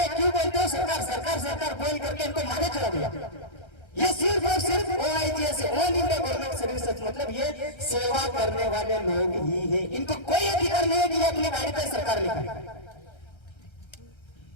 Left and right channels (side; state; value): right; late; 1.3 ms